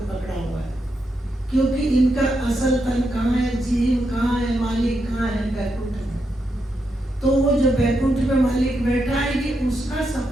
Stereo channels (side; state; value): both; normal; correlation 0.83